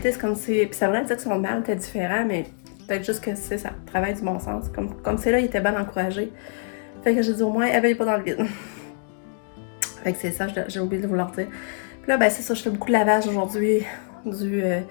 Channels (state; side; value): silent; right; 62 dB below the other